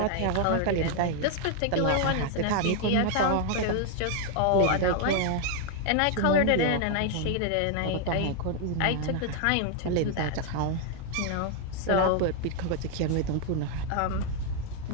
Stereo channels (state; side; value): different; both; correlation 0.00